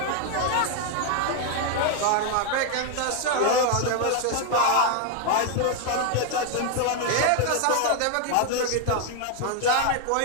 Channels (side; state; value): both; different; correlation 0.00